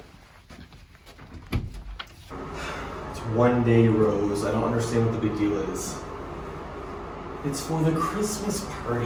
It's one day, Rose. I don't understand what the big deal is. It's for the Christmas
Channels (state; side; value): identical; both; correlation 1.00